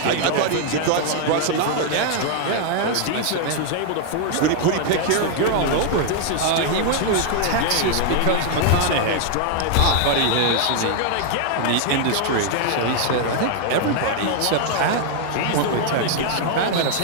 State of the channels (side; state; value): both; different; correlation 0.00